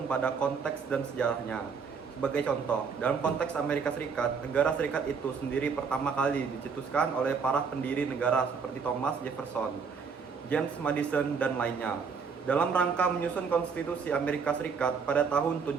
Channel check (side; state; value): left; quieter; 5.7 dB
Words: pada konteks dan sejarahnya. Sebagai contoh, dalam konteks Amerika Serikat, Negara Serikat itu sendiri pertama kali dicetuskan oleh para pendiri negara seperti Thomas Jefferson, James Madison, dan lainnya. Dalam rangka menyusun konstitusi Amerika Serikat pada tahun